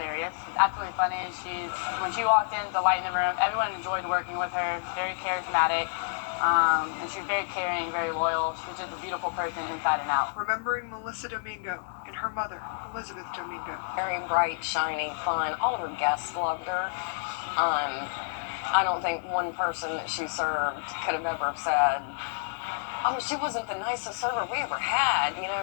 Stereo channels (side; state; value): right; silent; digital silence